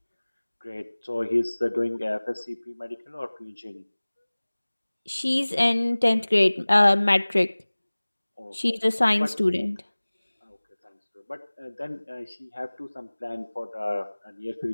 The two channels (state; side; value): inverted; both; correlation -1.00